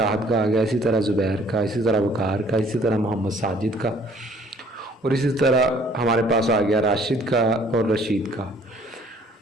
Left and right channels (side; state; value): both; normal; correlation 0.58